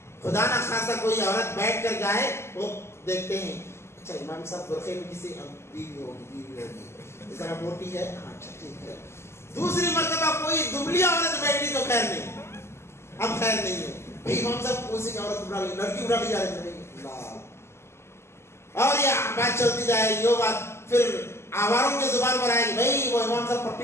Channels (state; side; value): late; right; 0.13 ms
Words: خدا نہ خاصا کوئی عورت بیٹھ کر جائے, وہ دیکھتے ہیں اچھا امام صاحب برقعے میں کسی بیوی ہوگی, اس طرح موٹی ہے, اچھا ٹھیک ہے. دوسری مرتبہ کوئی دبلی عورت بیٹھی تو خیر نہیں, اب خیر نہیں ہے بھائی, امام صاحب اسی کی عورت اٹھا لی, لڑکی اٹھا لی جا رہی ہے, اور یہ بات چلتی جائے گی. وہ بات پھر آواروں کی زبان پر آئے گی, بھائی وہ امام صاحب